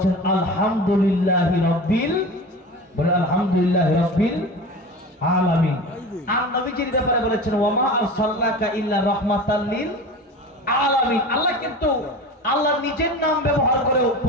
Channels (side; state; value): both; normal; correlation 0.32